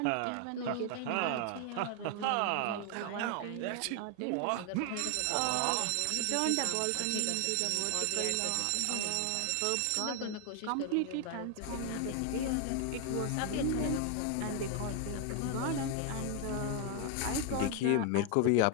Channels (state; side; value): different; both; correlation 0.00